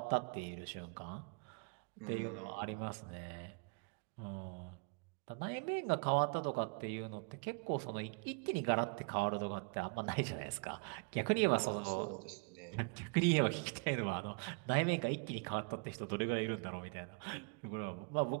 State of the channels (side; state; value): left; quieter; 34.0 dB